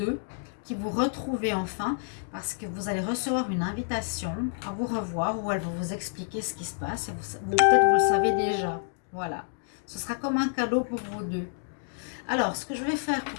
qui vous retrouvez enfin, parce que vous allez recevoir une invitation à vous revoir où elle va vous expliquer ce qui se passe et peut-être vous le savez déjà. Voilà, ce sera comme un cadeau pour vous deux. Alors, ce que je vais faire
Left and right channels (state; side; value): silent; right; digital silence